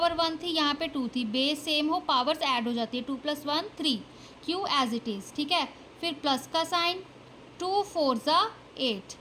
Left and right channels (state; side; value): identical; both; correlation 1.00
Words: 1 थी, यहाँ पे 2 थी, बेस सेम हो पावर्स ऐड हो जाती है, 2 + 1 3, q एज इट इज़, ठीक है। फिर प्लस का साइन, 2 4 = 8,